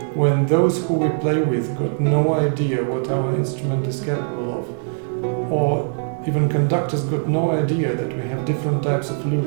when those who we play with got no idea what our instrument is capable of, or even conductors got no idea that we have different types of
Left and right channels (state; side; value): silent; left; digital silence